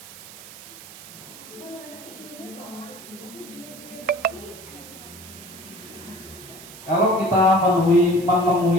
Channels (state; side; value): noise; right; hiss, 16 dB below the sound